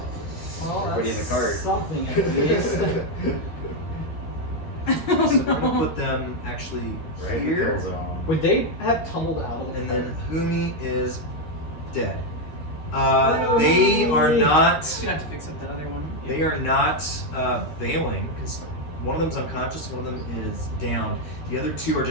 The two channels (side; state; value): right; late; 13 ms